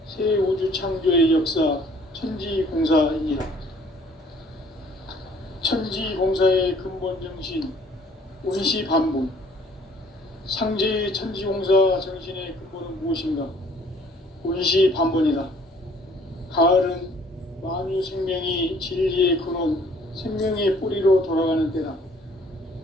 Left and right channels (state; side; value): normal; both; correlation 0.58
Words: 새 우주 창조의 역사 천지공사이니라. 천지공사의 근본 정신 운시반본. 상제의 천지공사 정신의 근본은 무엇인가? 운시반본이다. 가을은 만유 생명이 진리의 근원, 생명의 뿌리로 돌아가는 때다.